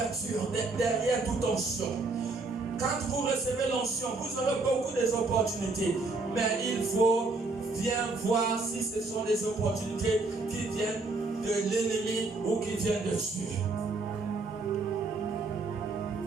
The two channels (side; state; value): left; quieter; 3.6 dB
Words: derrière toute onction. Quand vous recevez l'onction, vous aurez beaucoup d'opportunités. Mais il faut bien voir si ce sont des opportunités qui viennent de l'ennemi ou qui viennent de Dieu.